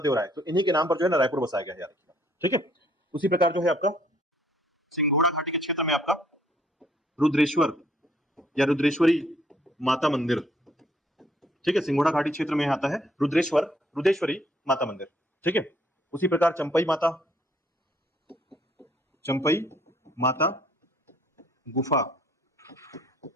राय, तो इन्हीं के नाम पर जो है ना रायपुर बसाया गया है, याद रखिएगा। ठीक है, उसी प्रकार जो है आपका सिंघोड़ा घाटी के क्षेत्र में आपका रुद्रेश्वर या रुद्रेश्वरी माता मंदिर। ठीक है, सिंघोड़ा घाटी क्षेत्र में आता है रुद्रेश्वरी माता मंदिर। ठीक है, उसी प्रकार चंपई माता गुफा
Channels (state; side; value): normal; both; correlation 0.64